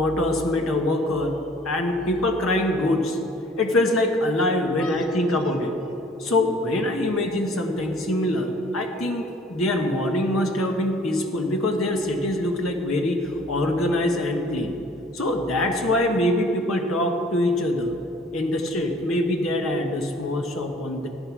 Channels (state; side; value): normal; both; correlation 0.54